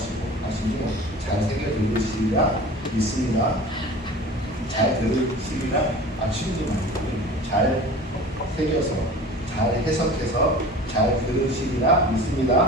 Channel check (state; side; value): normal; both; correlation 0.39